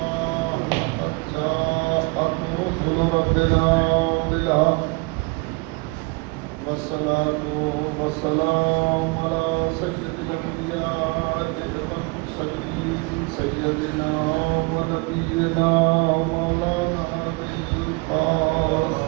لقد جاءت رسل ربنا بالحق والصلاة والسلام على سيد الأنبياء والمرسلين سيدنا ونبينا مولانا أبي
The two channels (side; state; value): left; quieter; 28.2 dB